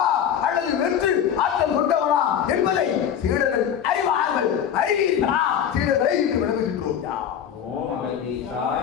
அல்லது வெற்று ஆற்றல் கொண்டவனா என்பதை சீடர்கள் அறிவார்கள். சீடர்களை விளங்குகின்றோம்.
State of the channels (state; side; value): quieter; right; 8.9 dB